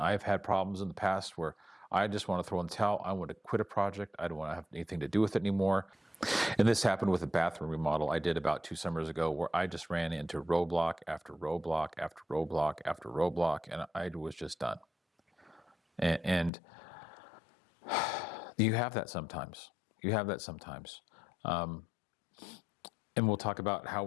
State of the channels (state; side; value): drops out; right; at 16.5 s